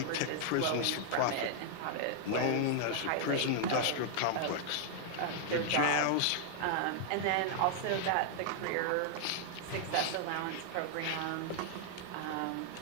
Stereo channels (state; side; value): different; both; correlation 0.00